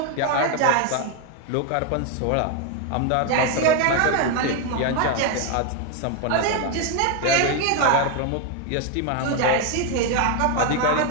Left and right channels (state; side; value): different; both; correlation 0.01